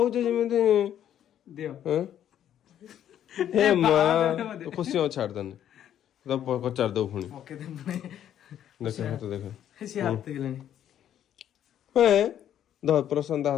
ଯେମିତି ହେ ମା ଖୁସି ହଉ ଛାଡିଦେନି ପଚାରି ଦବୁ ପୁଣି ଦେଖ ହାତ ଦେଖ ପ୍ରଶାନ୍ତ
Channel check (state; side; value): quieter; right; 10.5 dB